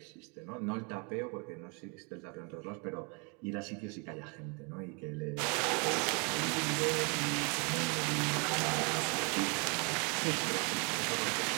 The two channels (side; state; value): left; quieter; 33.3 dB